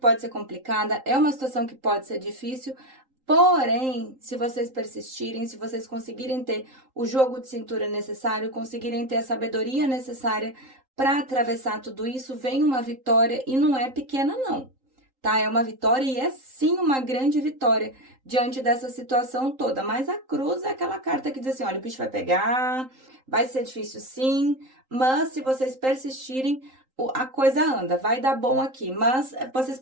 ser complicada, é uma situação que pode ser difícil, porém, se vocês persistirem, se vocês conseguirem ter o jogo de cintura necessário, conseguirem ter a sabedoria necessária para atravessar tudo isso, vem uma vitória e não é pequena não, tá? É uma vitória e é sim uma grande vitória diante dessa situação toda. Mas a cruz é aquela carta que diz assim: olha, o bicho vai pegar, vai ser difícil sim, mas se vocês persistirem, a coisa anda, vai dar bom aqui. Mas vocês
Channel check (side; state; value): left; late; 3.8 ms